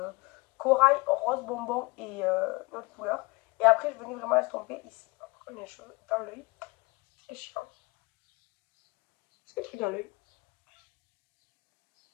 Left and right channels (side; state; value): right; quieter; 24.8 dB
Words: Corail, rose bonbon et une autre couleur. Et après, je venais vraiment estomper ici. Comme les cheveux dans l'œil. C'est chiant. C'est le truc dans l'œil.